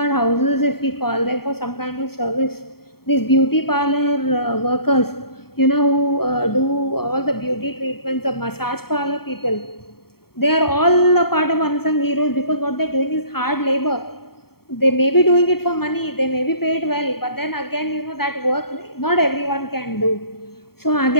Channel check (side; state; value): right; late; 0.95 ms